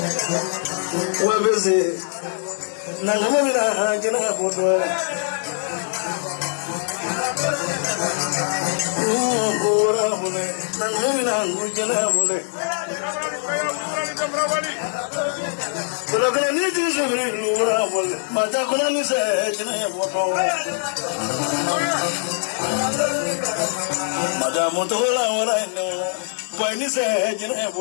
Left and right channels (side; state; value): right; silent; 58 dB below the other